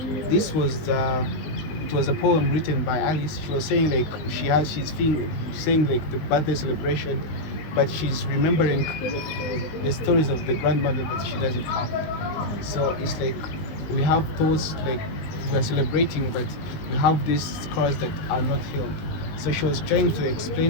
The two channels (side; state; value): right; late; 19 ms